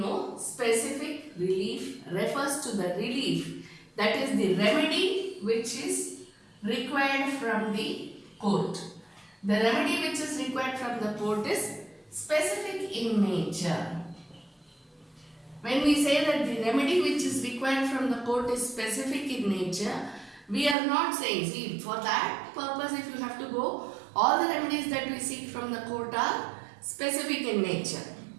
specific relief refers to the relief, that is the remedy which is required from the court. The remedy which is required from the court is specific in nature. When we say that the remedy which is required from the court is specific in nature, we are not saying, see, for that purpose if you have to go, all the remedies that we seek from the court are specific in nature.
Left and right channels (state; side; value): drops out; left; at 20.8 s